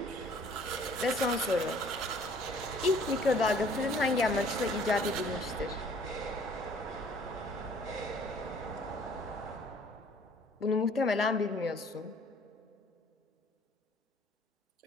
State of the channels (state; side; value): normal; both; correlation 0.56